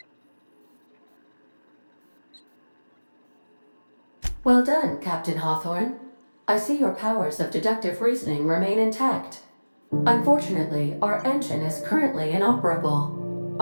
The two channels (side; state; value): both; inverted; correlation -1.00